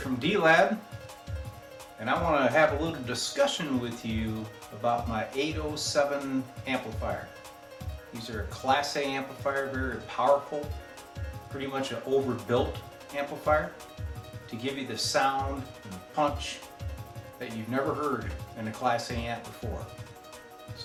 D-Lab, and I want to have a little discussion with you about my 807 amplifier. These are a Class A amplifier, very powerful, pretty much an overbuilt amplifier to give you the sound and punch that you've never heard in a Class A amp before.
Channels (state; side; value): identical; both; correlation 1.00